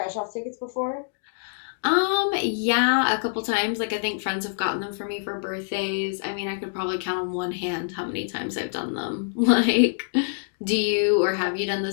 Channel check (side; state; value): right; silent; digital silence